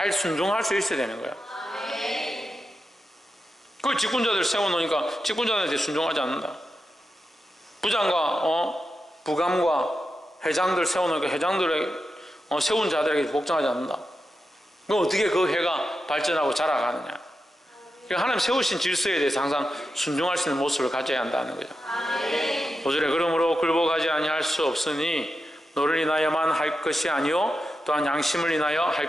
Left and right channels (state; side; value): normal; both; correlation 0.89